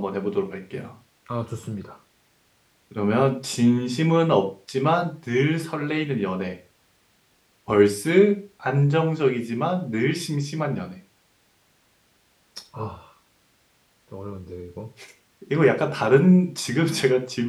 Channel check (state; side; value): identical; both; correlation 1.00